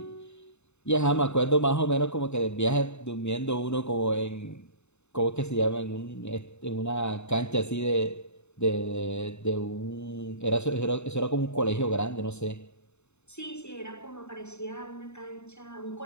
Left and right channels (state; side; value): late; right; 0.82 ms